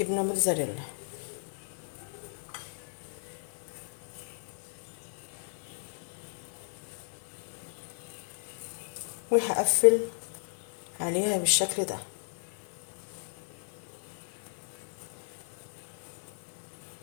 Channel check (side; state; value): right; silent; 55 dB below the other